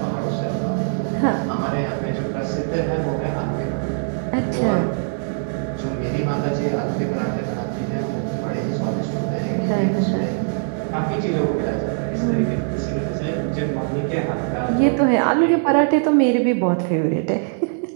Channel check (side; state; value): left; silent; 64 dB below the other